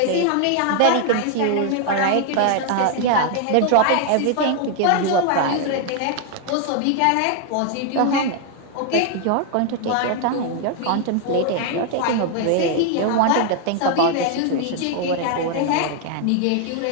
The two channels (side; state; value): both; different; correlation 0.00